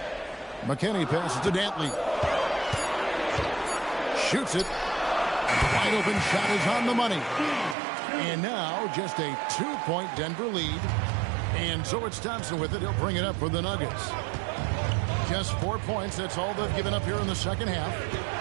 McKinney passes to Dantley. Shoots it. Wide open shot is on the money. And now just a 2-point Denver lead. And so it's Thompson with it. He'll bring it up for the Nuggets. Just 4 points. That's all they've given up here in the second half.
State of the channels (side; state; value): left; drops out; at 7.8 s